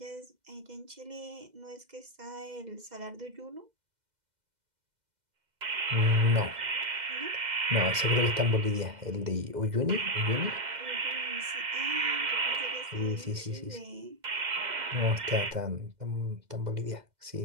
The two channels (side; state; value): left; late; 2.0 ms